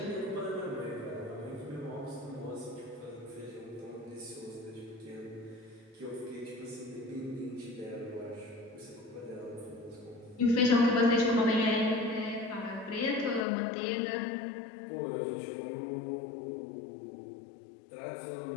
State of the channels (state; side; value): drops out; right; at 13.5 s